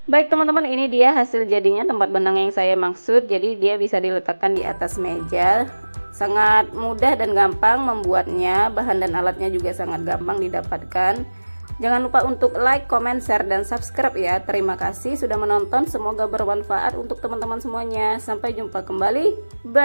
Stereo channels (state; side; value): inverted; both; correlation -1.00